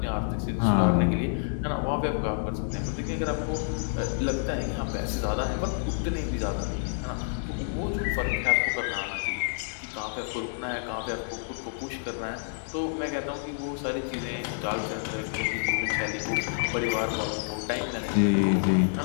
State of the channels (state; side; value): silent; right; digital silence